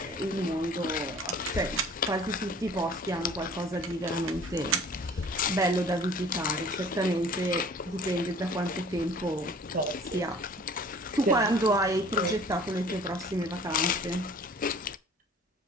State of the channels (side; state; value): both; normal; correlation 0.49